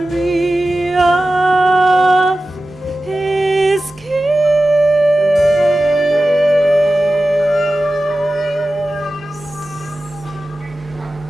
of his kiss.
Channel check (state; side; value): normal; both; correlation 0.95